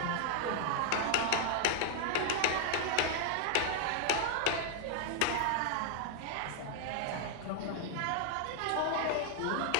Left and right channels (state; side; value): different; both; correlation 0.00